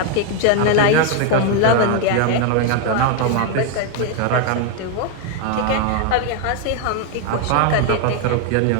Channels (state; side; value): different; both; correlation 0.01